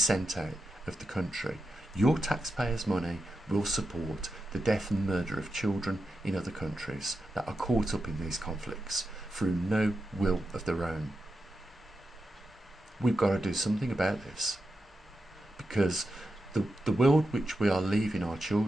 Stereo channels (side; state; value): both; normal; correlation 0.88